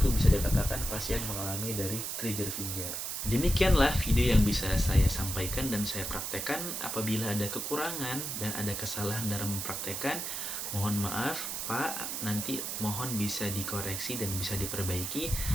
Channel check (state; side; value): noise; right; hiss, 3 dB below the sound